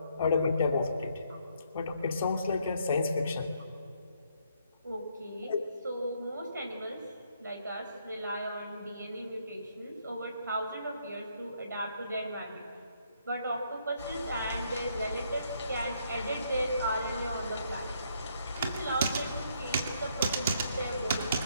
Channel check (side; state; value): both; inverted; correlation -0.71